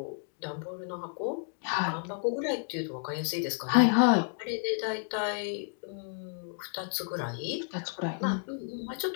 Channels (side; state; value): right; silent; 57 dB below the other